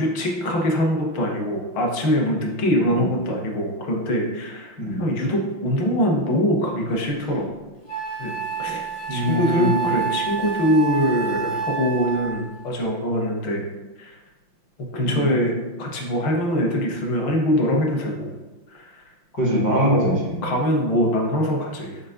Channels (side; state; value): right; late; 5.8 ms